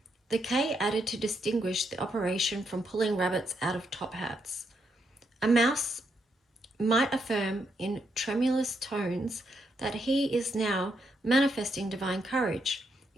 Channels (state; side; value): normal; both; correlation 0.79